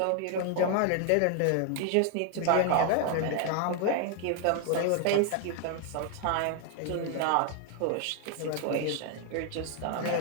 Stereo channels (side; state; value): both; different; correlation 0.00